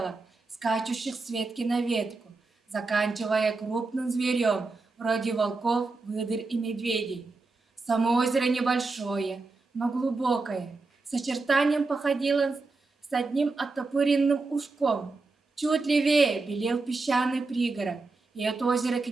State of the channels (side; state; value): left; quieter; 3.7 dB